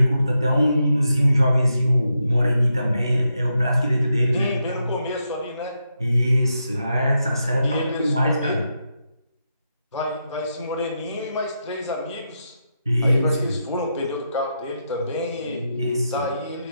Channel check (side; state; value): both; inverted; correlation -0.84